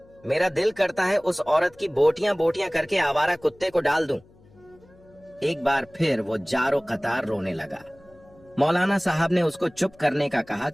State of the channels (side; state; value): left; noise; hum, 28 dB below the sound